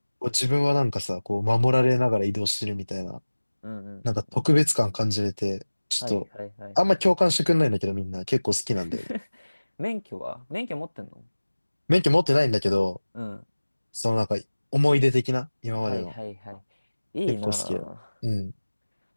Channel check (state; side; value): inverted; both; correlation -1.00